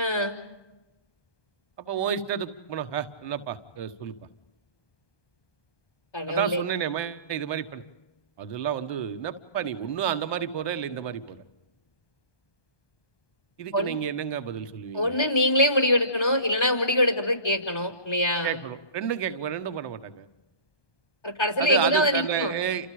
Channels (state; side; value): late; right; 1.2 ms